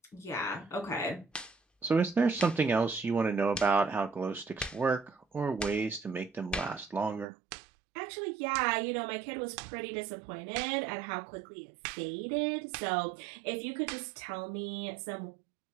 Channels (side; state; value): left; drops out; at 7.2 s